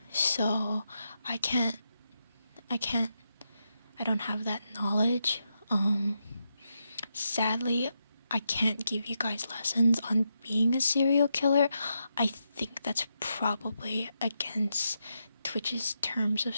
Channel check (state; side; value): inverted; both; correlation -0.84